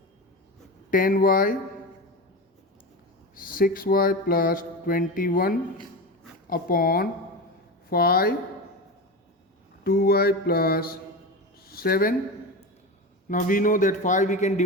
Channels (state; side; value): normal; both; correlation 0.24